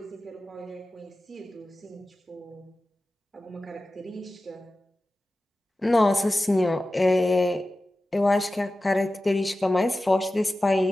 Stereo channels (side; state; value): both; normal; correlation 0.95